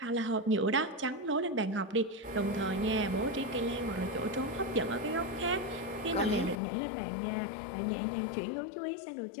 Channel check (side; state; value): right; drops out; at 6.6 s